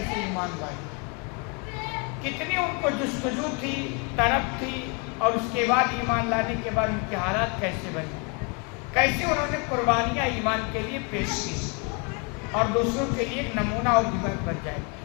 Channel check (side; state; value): right; quieter; 34.1 dB